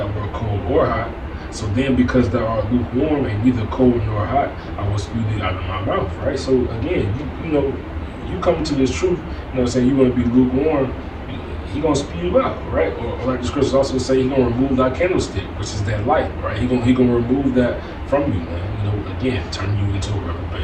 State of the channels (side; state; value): both; identical; correlation 1.00